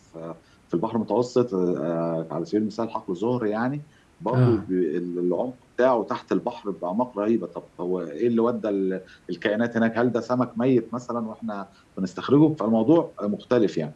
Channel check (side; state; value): both; identical; correlation 1.00